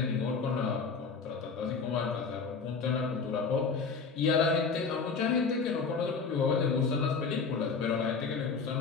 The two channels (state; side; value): quieter; right; 5.1 dB